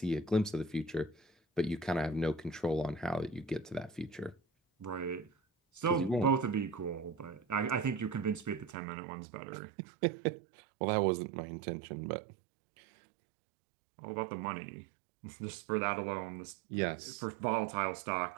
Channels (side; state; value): left; drops out; at 8.8 s